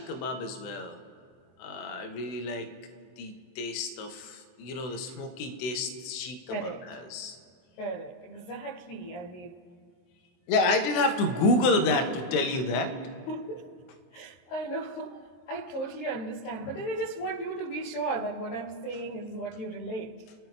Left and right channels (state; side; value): late; right; 24 ms